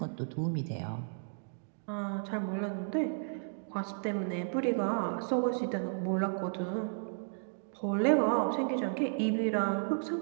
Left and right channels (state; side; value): silent; left; digital silence